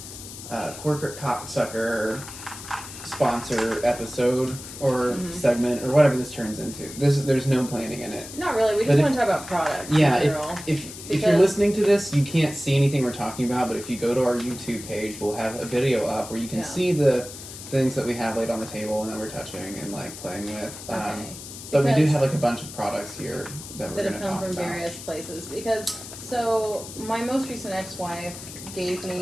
corporate cocksucker sponsor episode or segment or whatever this turns into. There's no planning in it. Not really. We just want to talk about products. Yeah, if you're listening to this, you can't see anything we're talking about, but if you go to our YouTube page, we'll have a video up where you can see the things that we have laid on the table and that we're touching and like playing with. But we do have like a bunch of products here that we're going to talk about. That have come from various places. So my most recent ex-wife gave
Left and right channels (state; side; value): noise; left; hiss, 13 dB below the sound